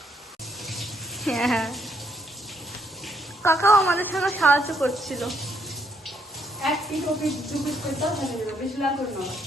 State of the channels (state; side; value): normal; both; correlation 0.72